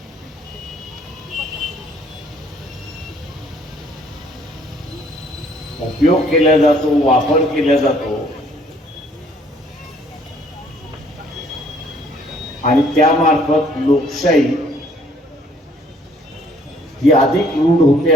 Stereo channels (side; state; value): both; normal; correlation 0.61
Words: उपयोग केला जातो, वापर केला जातो आणि त्यामार्फत लोकशाही ही अधिक रूढ होते,